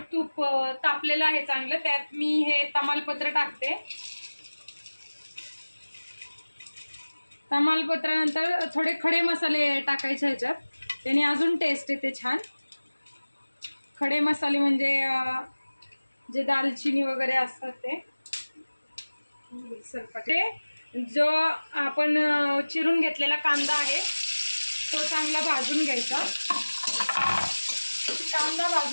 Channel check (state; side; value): inverted; both; correlation -1.00